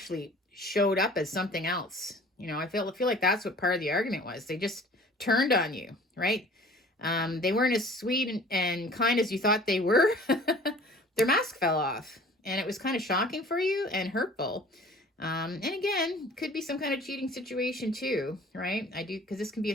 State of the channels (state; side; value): normal; both; correlation 0.48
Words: showed up as something else. I feel like that's what part of the argument was. They just turned on you, right? They weren't as sweet and kind as you thought they were. Their mask fell off, and it was kind of shocking for you and hurtful. And again, could be some kind of cheating situation too, right? Because this can be a